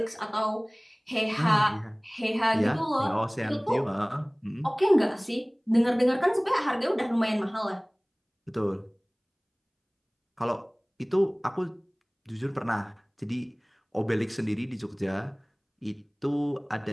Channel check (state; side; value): identical; both; correlation 1.00